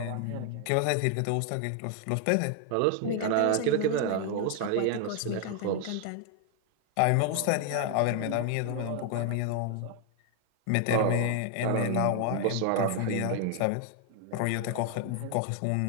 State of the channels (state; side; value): different; both; correlation 0.00